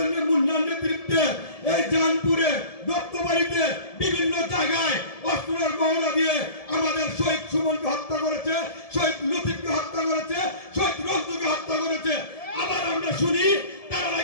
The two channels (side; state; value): right; late; 1.7 ms